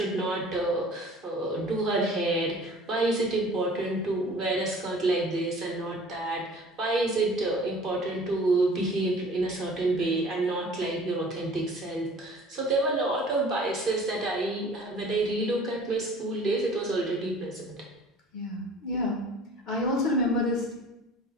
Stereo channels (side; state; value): both; normal; correlation 0.47